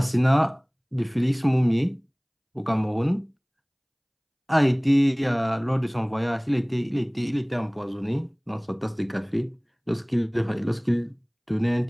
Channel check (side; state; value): both; identical; correlation 1.00